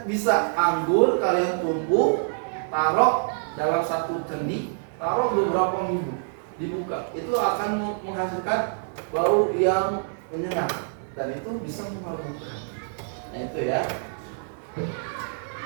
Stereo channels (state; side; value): silent; left; 57 dB below the other